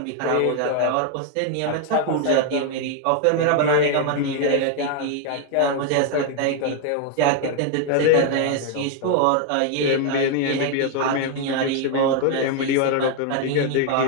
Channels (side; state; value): both; different; correlation 0.00